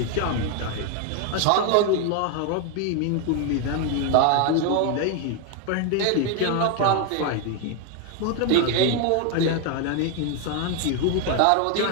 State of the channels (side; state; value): both; different; correlation 0.01